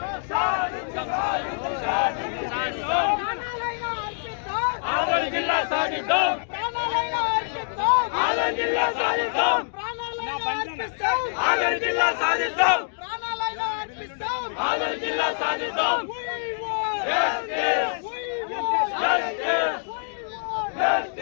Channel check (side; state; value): right; silent; digital silence